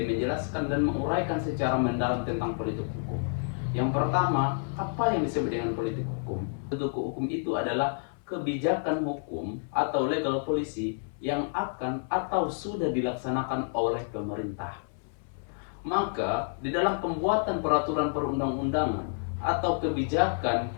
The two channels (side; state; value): right; silent; 58 dB below the other